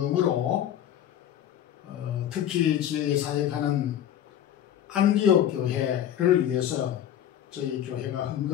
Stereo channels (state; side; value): quieter; right; 10.7 dB